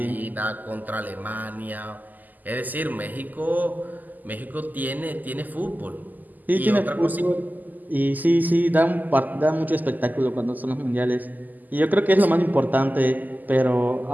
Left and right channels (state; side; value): late; left; 0.083 ms